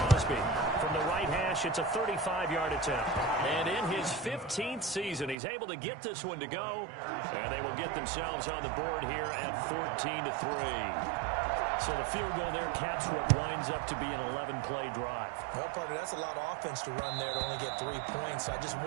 From the right hash, it's a 35-yard attempt. And in his 15th season, he's able to get this one to go. And they will get themselves on the board here at 14-3. So the field goal there caps what winds up to be an 11-play drive. Well, partner, that's a lot of offense to run there to only get 3 points. So I just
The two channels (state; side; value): drops out; left; at 5.4 s